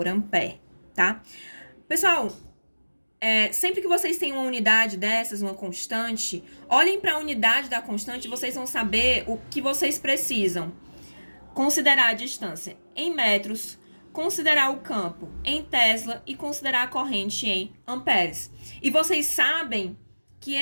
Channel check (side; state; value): both; inverted; correlation -1.00